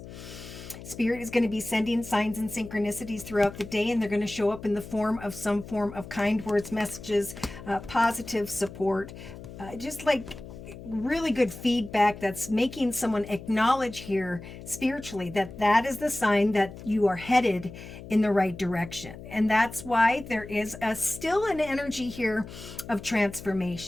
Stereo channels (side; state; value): left; noise; hum, 14 dB below the sound